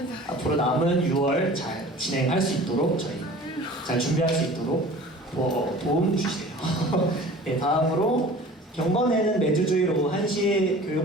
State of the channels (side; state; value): both; normal; correlation 0.43